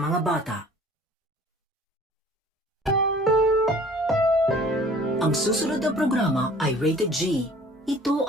bata. Ang susunod na programa ay rated G. Ito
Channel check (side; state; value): both; normal; correlation 0.50